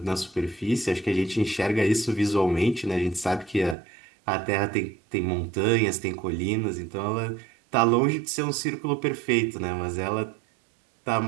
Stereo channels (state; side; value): drops out; left; at 3.8 s